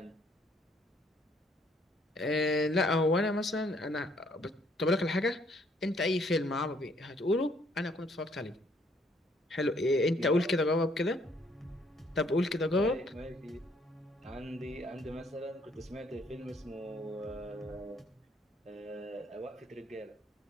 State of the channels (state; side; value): normal; both; correlation 0.66